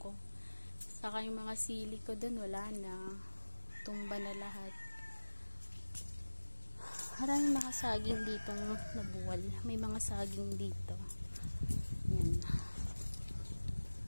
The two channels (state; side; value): inverted; both; correlation -1.00